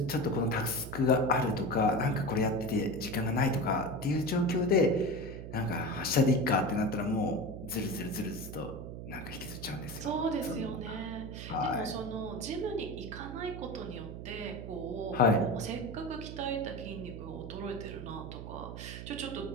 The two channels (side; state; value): right; noise; hum, 9 dB below the sound